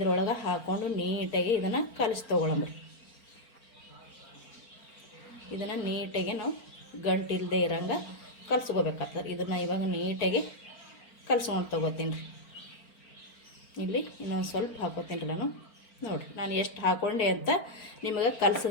ಹಾಕ್ಕೊಂಡು ನೀಟಾಗಿ ಇದನ್ನು ಕಲಿಸಿ ತೊಗೊಳಮ್ರಿ. ಇದನ್ನು ನೀಟಾಗಿ ನಾವು ಗಂಟಿಲ್ಲದೆ ಇರೋಂಗೆ ಕಲಿಸ್ಕೋಬೇಕಾಗ್ತದೆ. ಇದನ್ನು ಇವಾಗ ನೀಟಾಗಿ ಕಲಿಸ್ಕೊಂಡು ತೊಗೋತೀನಿ ರೀ. ಇಲ್ಲಿ ಇನ್ನೊಂದು ಸ್ವಲ್ಪ ಹಾಕೋತೀನಿ ರೀ ನಾನು. ನೋಡಿರಿ ನಾನು ಎಷ್ಟು ಹಾಕ್ಕೊಂಡೆ ಅಂತ ನಿಮಗೆ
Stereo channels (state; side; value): late; right; 4.4 ms